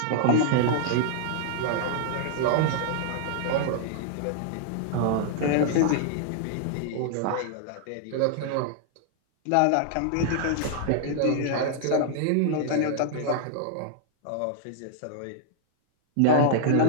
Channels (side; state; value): both; different; correlation -0.01